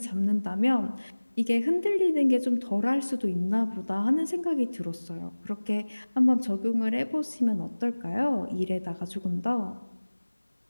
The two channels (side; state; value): both; inverted; correlation -1.00